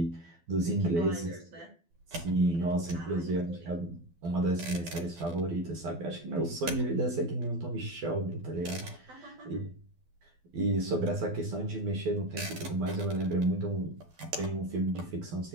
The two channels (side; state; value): left; late; 12 ms